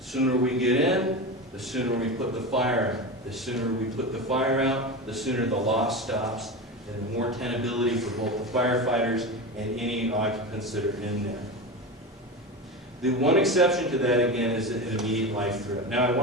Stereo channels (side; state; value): both; normal; correlation 0.23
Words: sooner we get in, the sooner we put the fire out. The sooner we put the fire out, the sooner the loss stops, and the more tenability for both the firefighters and any occupants that are in there. The one exception to that, again, is an immediate life threat. Now, I